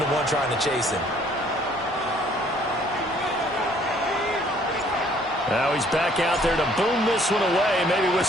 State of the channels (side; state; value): both; normal; correlation 0.61